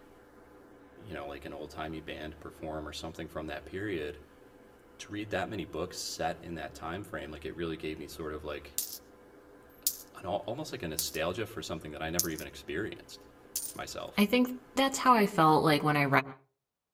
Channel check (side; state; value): both; identical; correlation 1.00